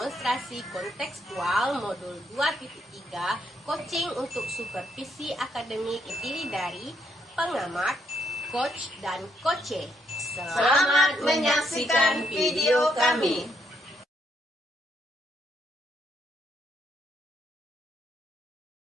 kontekstual modul 2.3 coaching untuk supervisi akademik terdiri dari pengamat, coach, dan coache. Selamat menyaksikan video kami.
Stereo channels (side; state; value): both; normal; correlation 0.75